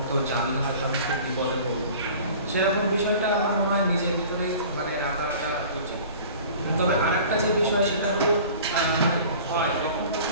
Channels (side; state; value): both; inverted; correlation -0.44